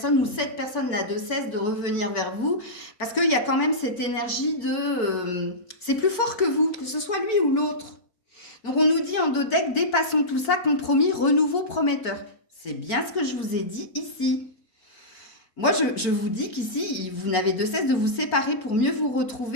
ou cette personne n'a de cesse de revenir vers vous, parce qu'il y a quand même cette énergie de... c'est plus fort que vous, que ce soit lui ou l'autre. Donc, on nous dit en dos deck, dépassons tout ça, compromis, renouveau prometteur. C'est bien ce que je vous ai dit ici. Moi, je vous dis qu'ici, vous n'avez de cesse de vous séparer pour mieux vous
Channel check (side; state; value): right; late; 4.5 ms